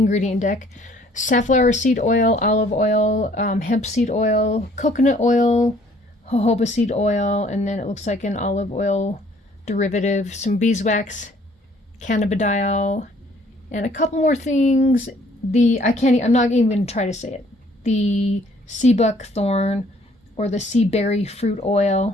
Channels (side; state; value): both; normal; correlation 0.60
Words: deck. Safflower seed oil, olive oil, hemp seed oil, coconut oil, jojoba seed oil, and then it looks like an olive oil derivative, some beeswax, cannabidiol, and a couple more things. I'm not even going to try to say it. The sea buckthorn or the sea berry fruit